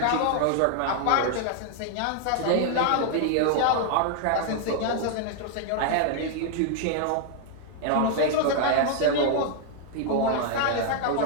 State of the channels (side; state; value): both; different; correlation 0.00